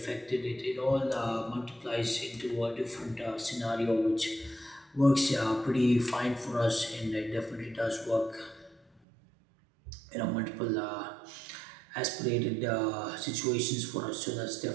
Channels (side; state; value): left; drops out; at 9.0 s